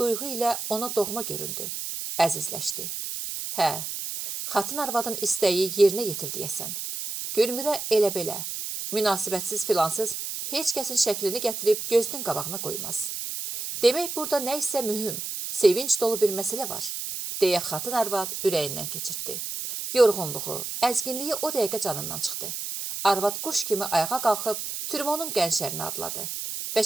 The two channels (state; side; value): noise; right; hiss, 5 dB below the sound